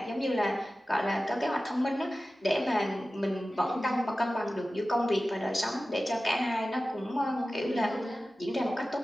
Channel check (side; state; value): both; normal; correlation 0.95